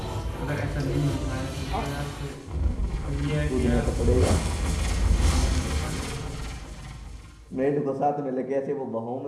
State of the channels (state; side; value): identical; both; correlation 1.00